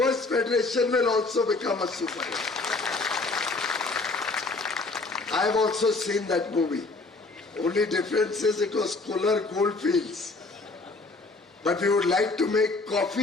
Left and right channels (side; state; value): right; quieter; 3.5 dB